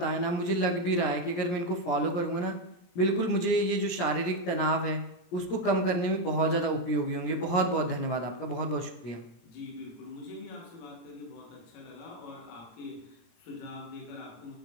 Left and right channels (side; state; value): right; late; 17 ms